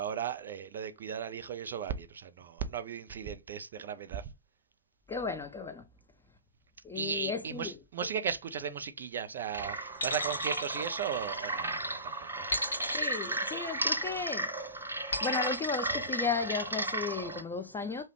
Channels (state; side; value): inverted; both; correlation -0.30